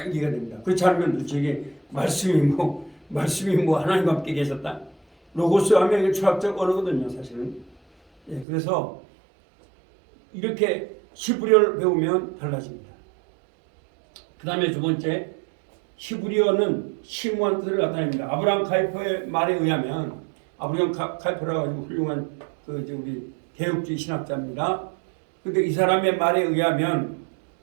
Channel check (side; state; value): left; drops out; at 8.5 s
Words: 이해가 됩니다. 그렇지 않으면 도대체 말씀이 뭐 하나님과 함께 계셨다. 로고스 하면 이게 철학적 언어거든요, 사실은. 예, 그래서 이렇게 히브리어를 배우면 달라집니다. 그 다음에 두 번째, 히브리어는 심오한 뜻을 나타냅니다. 아브라함 카이퍼의 말에 의하면 아브라함 카이퍼라고 아주 훌륭한 우리 개혁주의 신학자입니다. 그런데 이 사람의 말에 의하면